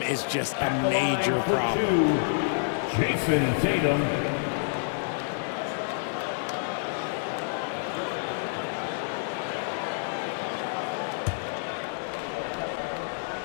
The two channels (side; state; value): right; silent; digital silence